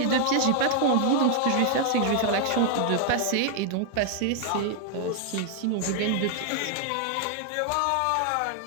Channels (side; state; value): both; different; correlation 0.00